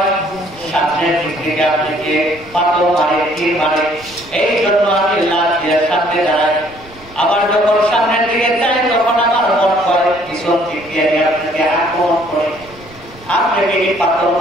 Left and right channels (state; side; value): noise; right; rumble, 23 dB below the sound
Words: সামনের দিক থেকে আপনাকে পাথর মারে, তীর মারে। এই জন্য আমি লাফ দিয়ে সামনে দাঁড়াই। আবার যখন সামনের দিকে যাই তখন আমার মন কয় পিছন দিক দিয়ে আপনাকে আক্রমণ করে, আপনাকে পাথর